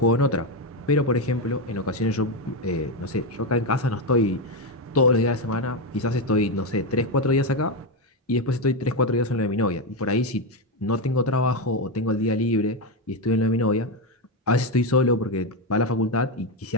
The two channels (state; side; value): normal; both; correlation 0.09